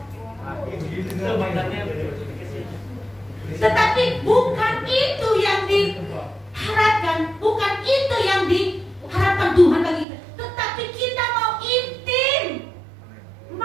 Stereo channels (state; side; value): drops out; left; at 10.1 s